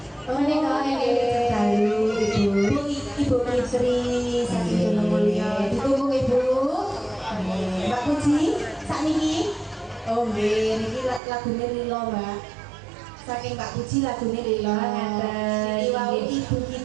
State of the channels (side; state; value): left; drops out; at 11.2 s